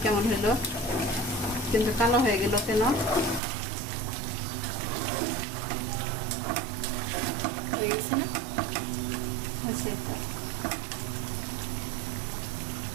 কেমন হলো, কিন্তু কালো হয়ে গেল কেন? হয়ে গেছে না? হয়েছে তো।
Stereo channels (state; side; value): drops out; left; at 3.4 s